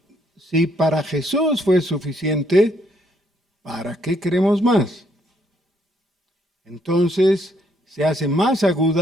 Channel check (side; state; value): both; normal; correlation 0.70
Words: Si para Jesús fue suficiente, ¿para qué queremos más? Entonces se hace más